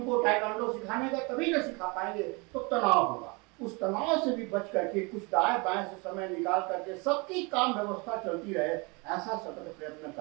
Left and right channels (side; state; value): left; quieter; 28.8 dB